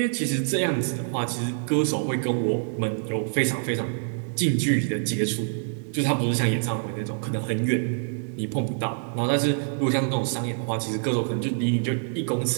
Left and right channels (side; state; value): left; silent; digital silence